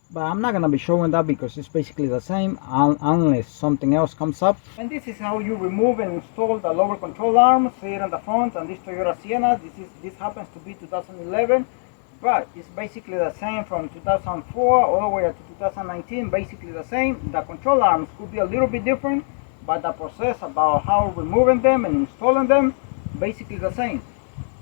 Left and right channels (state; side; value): silent; right; 63 dB below the other